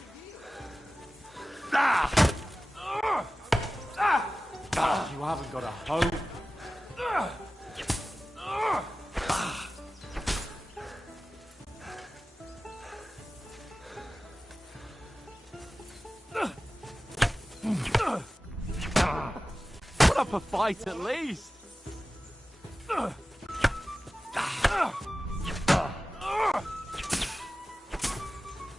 You haven't got a hope. Put up a fight at least.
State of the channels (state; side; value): normal; both; correlation 0.96